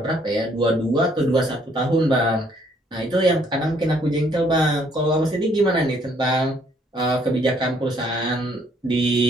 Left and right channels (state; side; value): normal; both; correlation 0.66